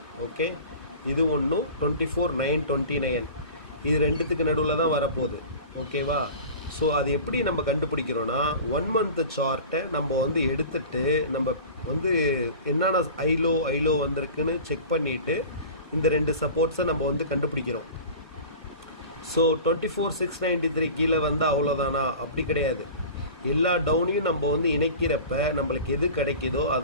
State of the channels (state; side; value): inverted; both; correlation -0.37